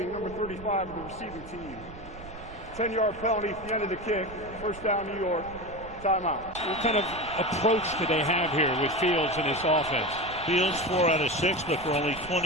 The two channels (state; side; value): noise; right; rumble, 16 dB below the sound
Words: number 35 of the receiving team. 10-yard penalty at the end of the kick. First down, New York. Timeout. What kind of approach do they have here with Fields and his offense? Fields 4 out of 6, but for only